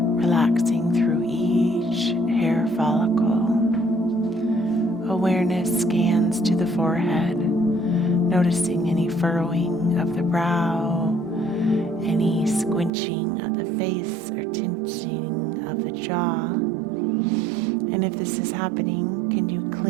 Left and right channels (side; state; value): left; drops out; at 12.9 s